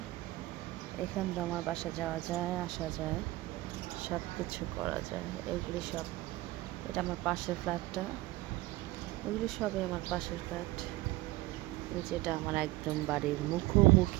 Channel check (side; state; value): left; quieter; 19.0 dB